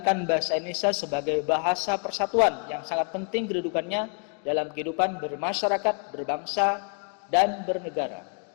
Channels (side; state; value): right; quieter; 39.2 dB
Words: bahasa Indonesia sebagai bahasa persatuan yang sangat penting kedudukannya dalam kehidupan bermasyarakat, berbangsa, dan bernegara.